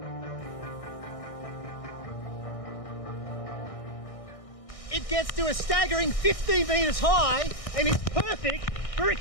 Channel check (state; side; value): late; right; 1.6 ms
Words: It gets to a staggering 15 metres high and is perfect for a